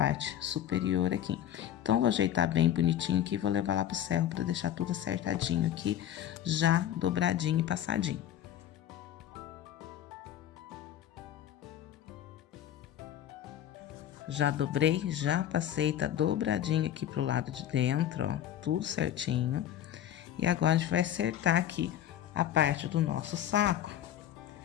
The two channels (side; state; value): right; quieter; 11.1 dB